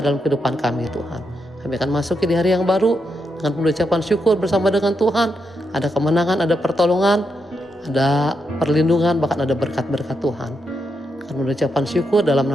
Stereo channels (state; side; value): normal; both; correlation 0.82